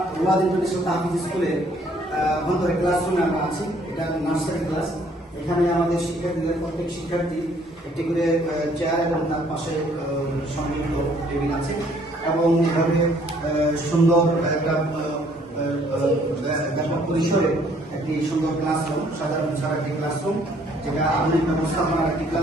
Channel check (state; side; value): normal; both; correlation 0.62